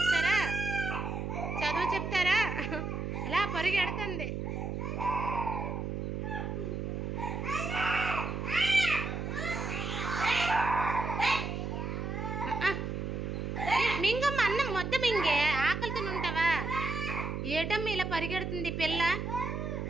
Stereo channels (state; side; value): noise; right; hum, 3 dB below the sound